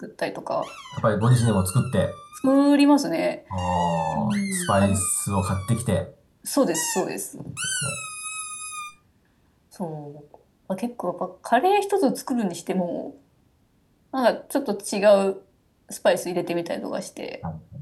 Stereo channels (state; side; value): identical; both; correlation 1.00